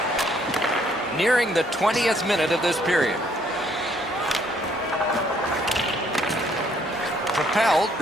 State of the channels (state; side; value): normal; both; correlation 0.66